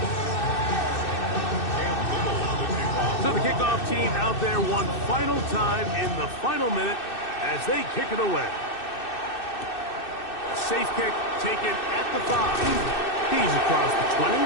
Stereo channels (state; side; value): late; right; 2.6 ms